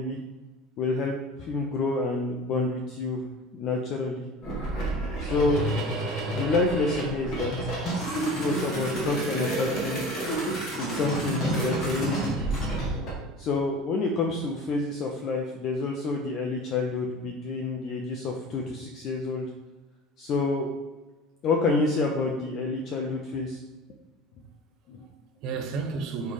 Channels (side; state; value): both; normal; correlation 0.38